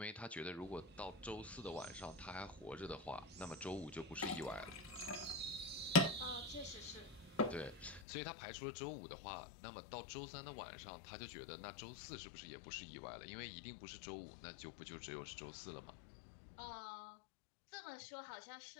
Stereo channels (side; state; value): right; drops out; at 8.1 s